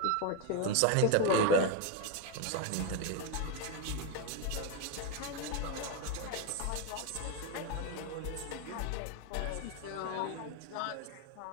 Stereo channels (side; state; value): both; different; correlation 0.02